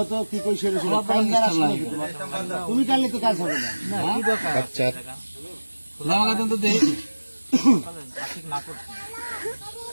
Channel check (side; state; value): both; inverted; correlation -1.00